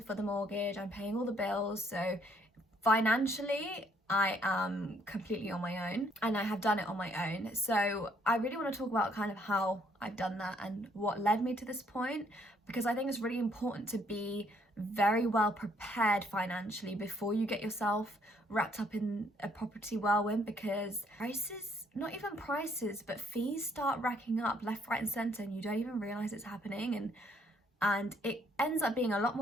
the mortgage, I'm paying all the bills. So financially, I am completely on my own, and I have done it on my own. So I really want to talk about kind of how I've done that and what led me to this point, because I think it's really important to be very well prepared financially before you get yourself wrapped up in a property whirlwind, because prices, not even prices, but fees start racking up left, right and centre, and you don't even realise it's happening, and it ends up being a lot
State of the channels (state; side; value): normal; both; correlation 0.67